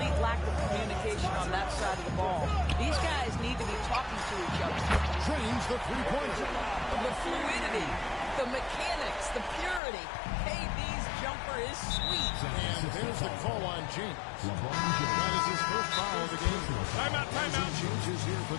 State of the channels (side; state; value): right; drops out; at 9.8 s